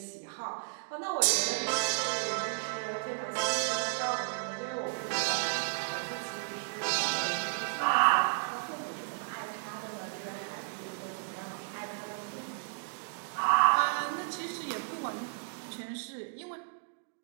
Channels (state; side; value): silent; left; digital silence